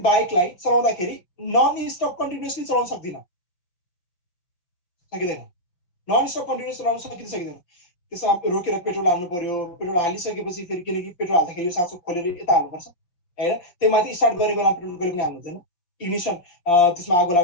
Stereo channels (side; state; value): right; late; 5.7 ms